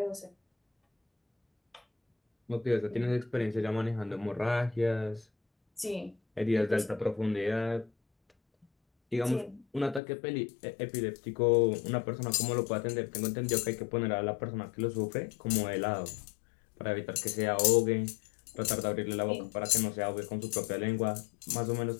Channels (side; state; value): right; drops out; at 10.0 s